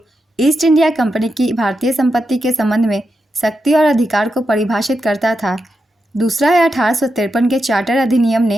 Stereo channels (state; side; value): normal; both; correlation 0.87